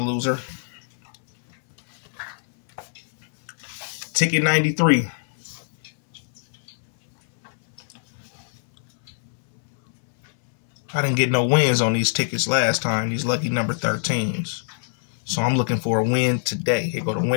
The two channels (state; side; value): silent; right; 62 dB below the other